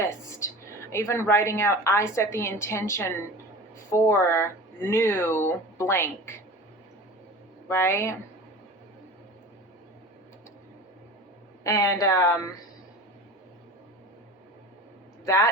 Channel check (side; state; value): both; normal; correlation 0.36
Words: even writing out, I set the intention for new blank, right? And